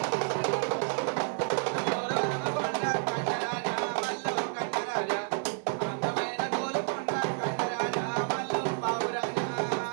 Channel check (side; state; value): left; silent; 58 dB below the other